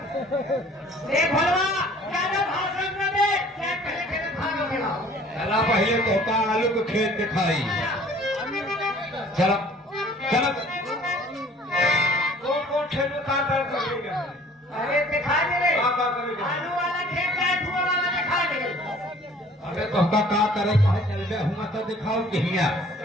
देख भलवा ज्यादा भाषण न दे, खेत पहले खेत खाना खिलाओ। चला पहले तो का आलू को खेत दिखाई। चलो चलो कौन खेत में काम करेगा? अरे दिखा दे रे, काम करेगा। आलू वाला खेत का धुआं वाला दिखा दे। अबे तो का करे कहे चलबे हुआ तो दिखाओ कहिया।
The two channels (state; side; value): normal; both; correlation 0.52